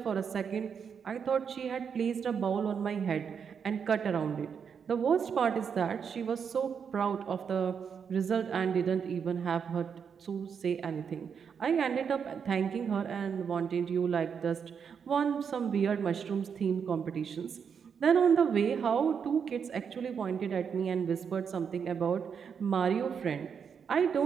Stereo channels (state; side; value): quieter; left; 6.9 dB